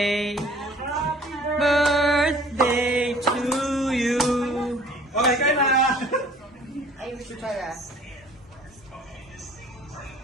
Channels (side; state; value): both; normal; correlation 0.52